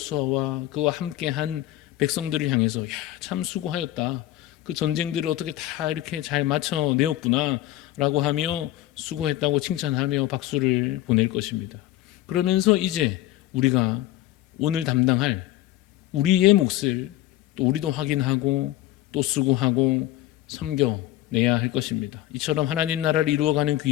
그와 함께한 백성들을 향해서 야, 참 수고하였다. 그 전쟁들을 어떻게 다 이렇게 잘 맞춰내었구나 라고 하며 수고했다고 칭찬하며 박수를 보낼 것입니다. 그러면서 이제 우리가 오늘 담당할 우리의 몫을 또 우리도 확인하고 또 수고하고 섬겨내야 할 것입니다. 이처럼 하나님 나라를 이루어가는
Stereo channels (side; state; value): right; quieter; 14.8 dB